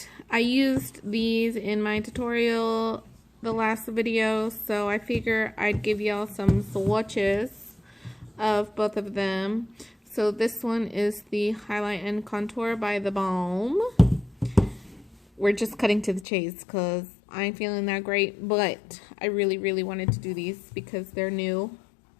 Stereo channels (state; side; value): drops out; right; at 16.2 s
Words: I used these in my tutorial the last video, so I figure I'd give y'all some swatches of both of them. So this one is the Highlight and Contour by TheBalm. We're just cutting to the chase because I ain't feeling that great, but I really wanted to do these because they're new.